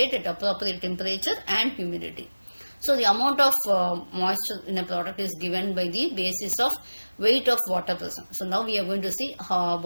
at appropriate temperature and humidity. So the amount of moisture in a product is given by the basis of weight of water present. So now we are going to see how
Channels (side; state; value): both; inverted; correlation -1.00